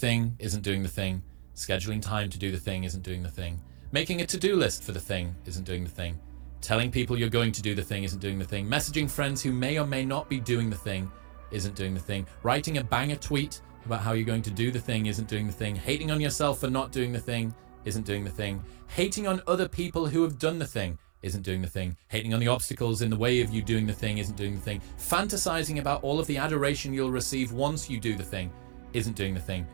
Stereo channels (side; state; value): left; silent; digital silence